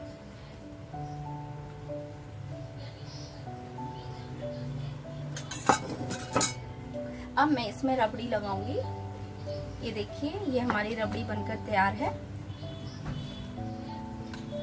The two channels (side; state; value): both; identical; correlation 1.00